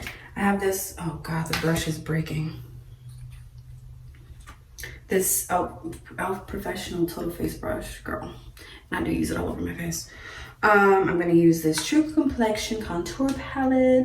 I have this, oh God, the brush is breaking. This Elf Professional Total Face Brush, girl. And I do use it all over my face. I'm gonna use this True Complexion Contour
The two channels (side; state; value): both; identical; correlation 1.00